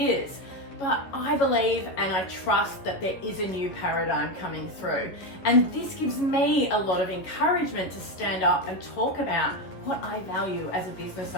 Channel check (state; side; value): late; right; 11 ms